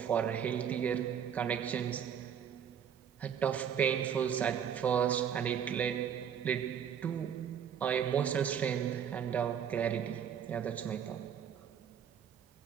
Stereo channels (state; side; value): quieter; left; 8.4 dB